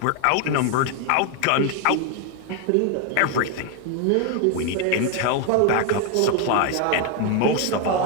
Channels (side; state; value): both; different; correlation 0.01